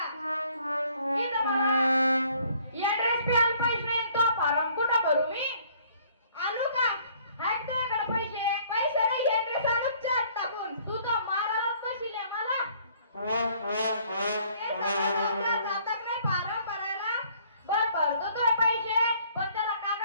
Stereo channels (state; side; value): inverted; both; correlation -0.60